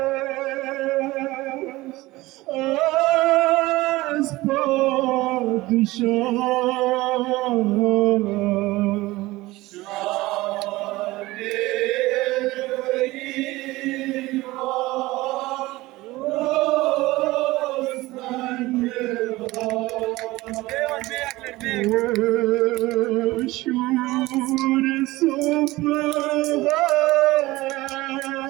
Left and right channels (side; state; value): left; quieter; 19.3 dB